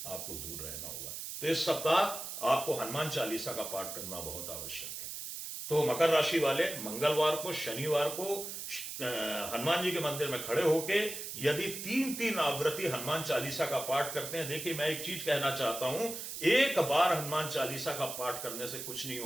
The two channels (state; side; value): noise; right; hiss, 7 dB below the sound